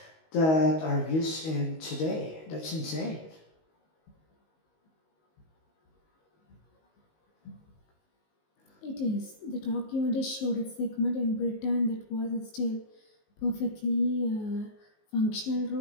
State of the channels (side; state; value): right; late; 19 ms